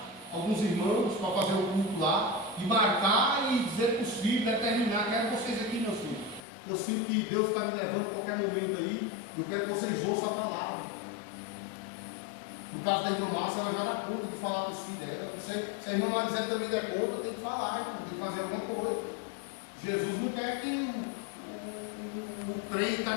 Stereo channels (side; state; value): right; drops out; at 6.5 s